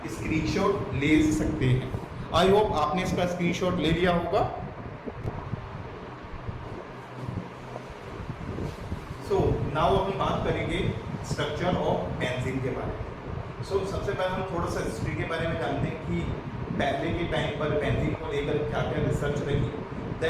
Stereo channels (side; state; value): both; identical; correlation 1.00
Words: स्क्रीनशॉट ले सकते हैं। आई होप आपने इसका स्क्रीनशॉट ले लिया होगा। सो नाउ हम बात करेंगे स्ट्रक्चर ऑफ बेंजीन के बारे में। सो सबसे पहले हम थोड़ा सा हिस्ट्री के बारे में जानते हैं कि पहले के टाइम पर बेंजीन को लेकर क्या क्या रिसर्च रही।